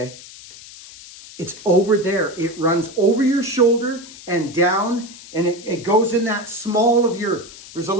It's over there. It runs over your shoulder and down, and it goes in that small of your, there's a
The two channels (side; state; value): left; noise; hiss, 17 dB below the sound